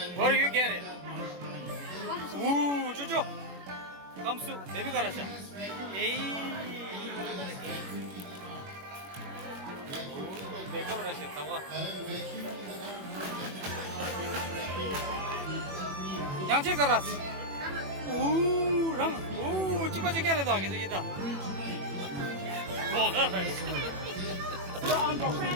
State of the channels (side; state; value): left; late; 21 ms